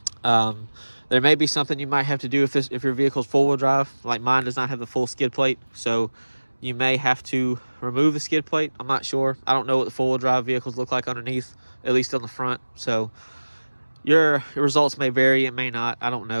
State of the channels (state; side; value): inverted; both; correlation -1.00